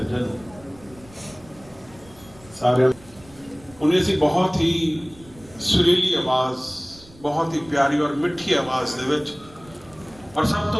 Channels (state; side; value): noise; right; rumble, 24 dB below the sound